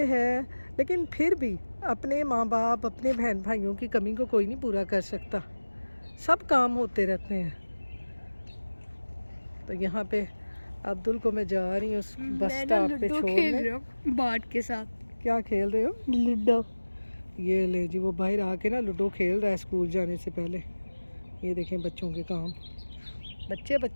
हैं, लेकिन फिर भी अपने माँ बाप अपने बहन भाइयों की कमी को कोई नहीं पूरा कर सकता। सब काम होते रहते हैं। तो यहाँ पे अब्दुल को मैं जा रही हूँ उस बस स्टॉप पे छोड़ने। बाट के साथ क्या खेल रहे हो? लूडो। ये ले जी, वो बाहर आके ना लूडो खेल रहा है स्कूल जाने से पहले। ये देखें बच्चों के काम, बच्चे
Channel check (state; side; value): inverted; both; correlation -1.00